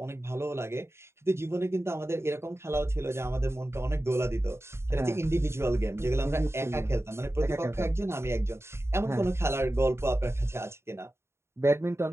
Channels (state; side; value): late; left; 0.13 ms